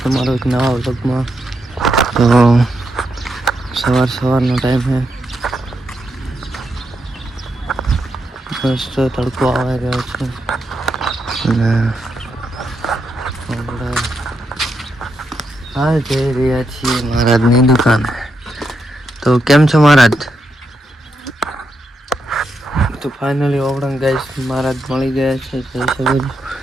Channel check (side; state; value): both; normal; correlation 0.83